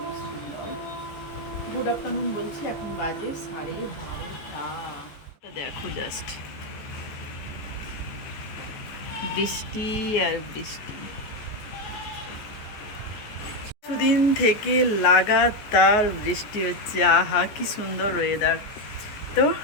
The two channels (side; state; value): right; late; 14 ms